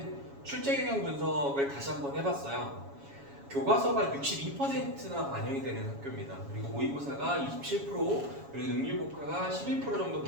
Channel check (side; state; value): left; late; 7.2 ms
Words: 출제 경향 분석을 다시 한번 해봤어요. 교과서가 62%나 반영이 되는 학교입니다. 그리고 모의고사가 27%, 그리고 능률국가가 11% 정도